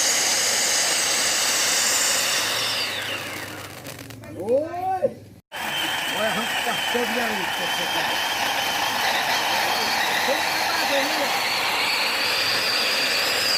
Oi! Olha, arranca o pastel de ali, você tá.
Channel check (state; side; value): identical; both; correlation 1.00